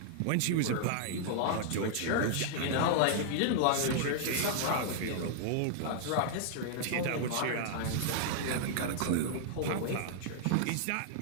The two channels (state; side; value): different; both; correlation -0.01